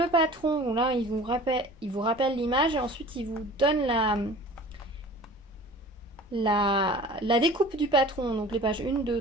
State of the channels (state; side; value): normal; both; correlation 0.43